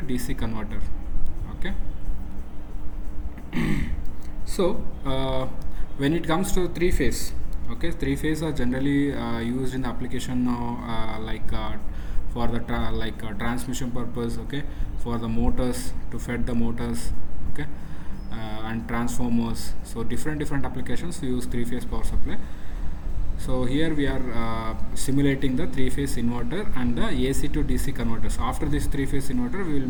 DC converter. Okay. So when it comes to three-phase, okay, three-phase are generally used in the application for the transmission purpose, okay, for the motors, to feed the motors, okay, and transformers. So different applications use three-phase power supply. So here we are simulating the three-phase inverter and the AC to DC converters. After this three-phase inverter, we will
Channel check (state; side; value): identical; both; correlation 1.00